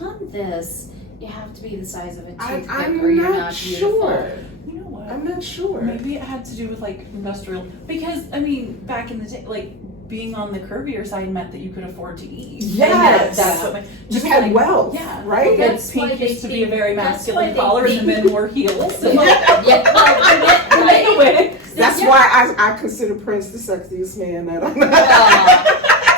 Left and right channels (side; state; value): both; normal; correlation 0.15